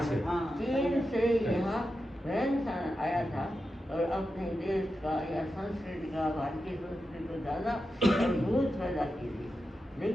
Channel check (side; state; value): both; normal; correlation 0.90